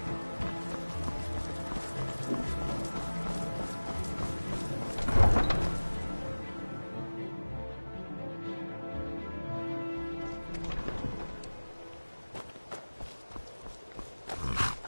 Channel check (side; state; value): both; inverted; correlation -1.00